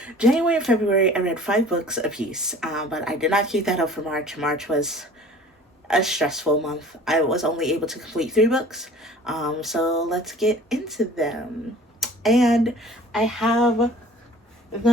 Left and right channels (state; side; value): normal; both; correlation 0.47